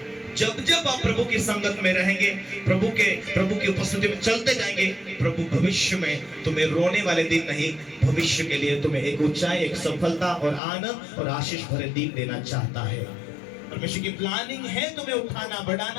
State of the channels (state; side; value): drops out; right; at 10.6 s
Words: जब जब आप प्रभु की संगत में रहेंगे, प्रभु की उपस्थिति में चलते जाएंगे, प्रभु भविष्य में तुम्हें रोने वाले दिन नहीं, भविष्य के लिए तुम्हें एक ऊंचाई, एक सफलता और आनंद और आशीष भरे दिन देना चाहता है। परमेश्वर की प्लानिंग है तुम्हें उठाना,